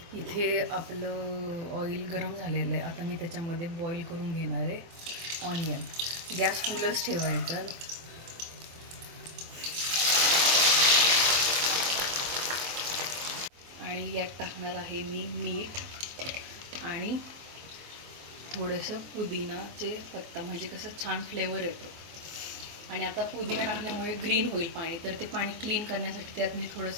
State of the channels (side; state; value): left; late; 24 ms